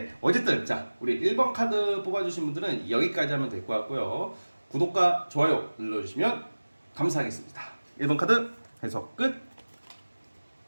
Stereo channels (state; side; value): inverted; both; correlation -1.00